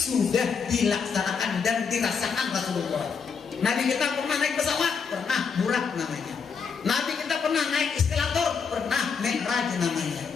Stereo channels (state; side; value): quieter; right; 5.9 dB